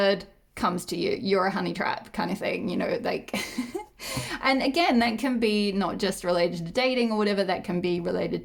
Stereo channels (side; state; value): both; identical; correlation 1.00